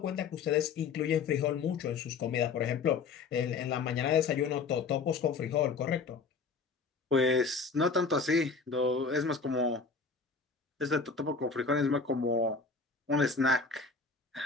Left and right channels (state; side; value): quieter; right; 4.8 dB